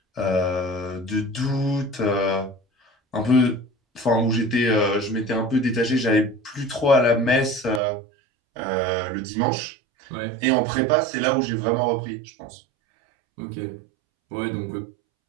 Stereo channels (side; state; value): left; drops out; at 7.8 s